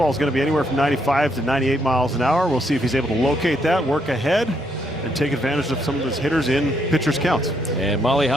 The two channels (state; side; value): normal; both; correlation 0.74